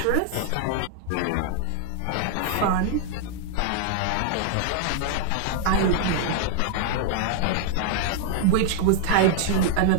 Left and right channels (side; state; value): both; different; correlation 0.00